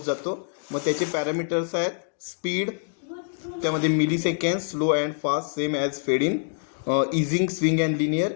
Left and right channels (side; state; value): right; silent; digital silence